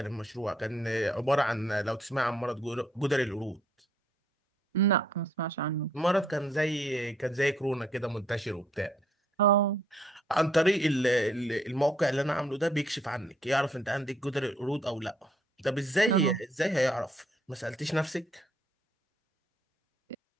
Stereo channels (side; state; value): both; normal; correlation 0.67